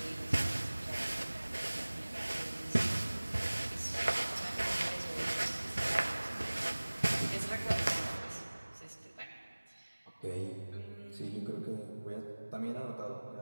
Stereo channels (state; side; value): inverted; both; correlation -1.00